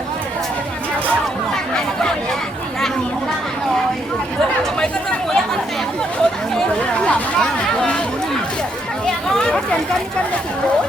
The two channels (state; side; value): normal; both; correlation 0.74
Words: Có tiền cân cho chị.